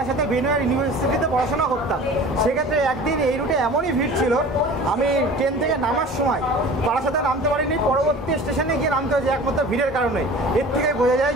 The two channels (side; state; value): both; normal; correlation 0.41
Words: বেনুয়ার ইউনিভার্সিটিতে পড়াশোনা করতাম। সেক্ষেত্রে একদিন এই রুটে এমনই ভিড় ছিল, আমি ট্রেন থেকে নামার সময় বারাসাতে নামতে পারিনি, পরবর্তী স্টেশনে গিয়ে নামতে হয়েছে একমাত্র ভিড়ের কারণে। এর থেকে বোঝা যায়